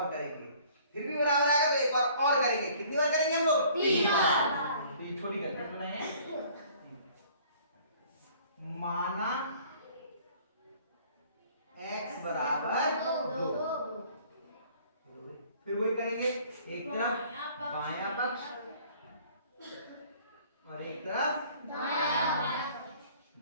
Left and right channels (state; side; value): inverted; both; correlation -0.55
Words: करेंगे, फिर भी बराबर आएगा तो एक बार और करेंगे। कितनी बार करेंगे हम लोग? 3 बार। तो ये छोटी करके बनाए, माना x बराबर 2। फिर वही करेंगे, एक तरफ बायां पक्ष और एक तरफ दायां